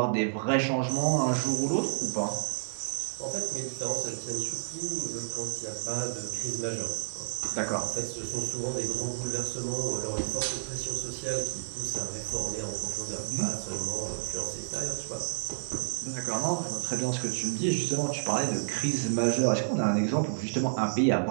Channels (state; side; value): silent; left; digital silence